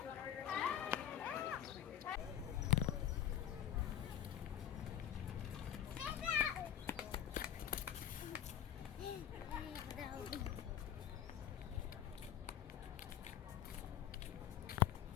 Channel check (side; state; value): right; quieter; 10.5 dB